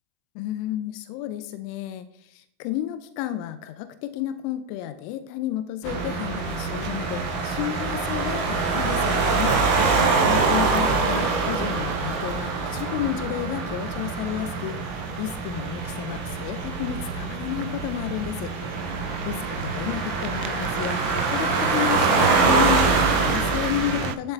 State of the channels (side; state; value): right; late; 23 ms